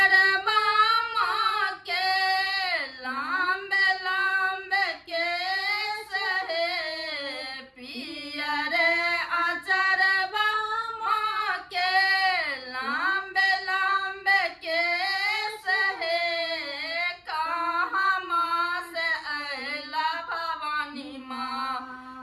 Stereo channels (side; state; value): both; identical; correlation 1.00